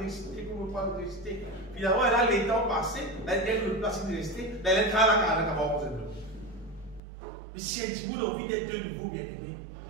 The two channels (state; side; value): drops out; left; at 7.0 s